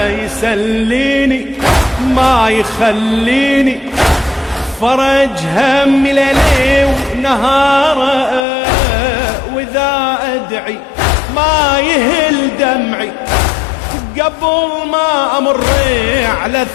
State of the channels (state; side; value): drops out; right; at 8.5 s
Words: يسليني ما يخليني، فرج همي ليلي ونهاره، وإذا أدعي ما يهل دمعي، قبل ما أمر على